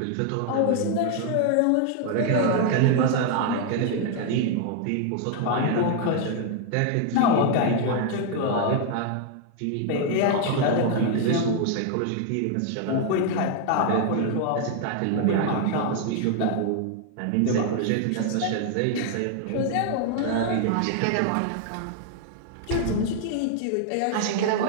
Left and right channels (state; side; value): different; both; correlation 0.00